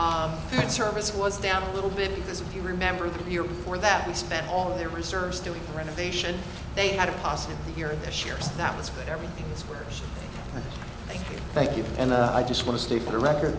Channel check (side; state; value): both; identical; correlation 1.00